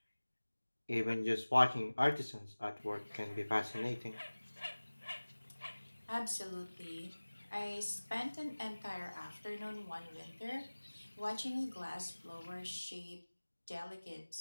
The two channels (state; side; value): inverted; both; correlation -1.00